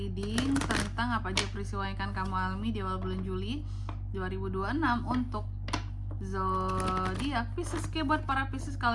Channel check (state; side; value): identical; both; correlation 1.00